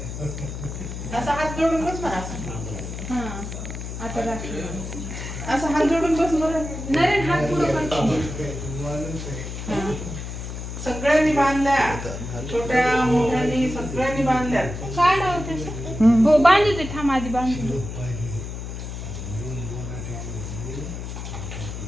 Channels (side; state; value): left; noise; hum, 7 dB below the sound